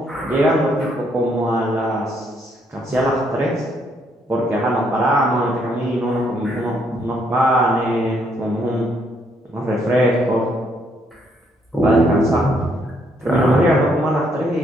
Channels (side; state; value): both; normal; correlation 0.71